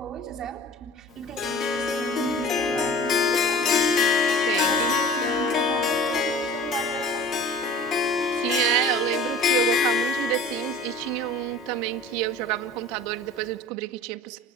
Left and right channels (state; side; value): normal; both; correlation 0.42